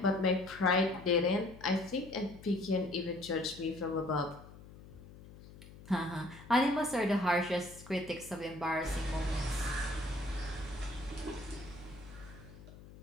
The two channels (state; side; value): noise; left; hum, 18 dB below the sound